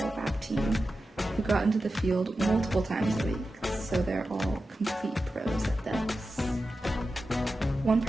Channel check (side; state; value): both; normal; correlation 0.92